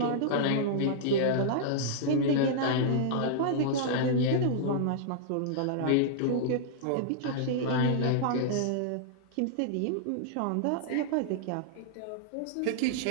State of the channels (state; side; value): different; both; correlation -0.01